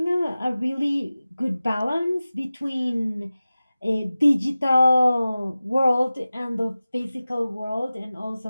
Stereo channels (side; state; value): both; inverted; correlation -0.96